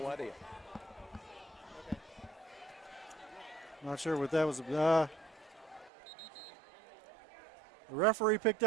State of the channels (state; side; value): drops out; left; at 5.9 s